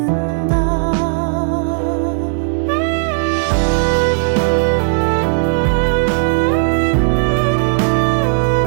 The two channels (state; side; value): silent; left; digital silence